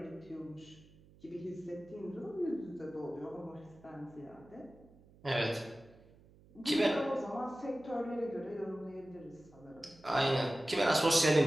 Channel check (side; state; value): right; noise; hum, 25 dB below the sound